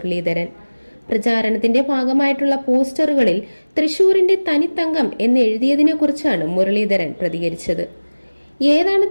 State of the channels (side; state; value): both; inverted; correlation -1.00